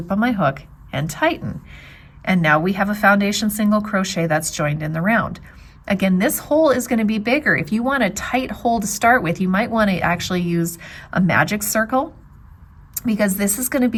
on my hook, and tighten. And now we have a foundation single crochet that's joined in the round. Again, this hole is going to be bigger. If you want a tight hole to start with, you might want to actually use a magic circle, because this is going to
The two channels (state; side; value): identical; both; correlation 1.00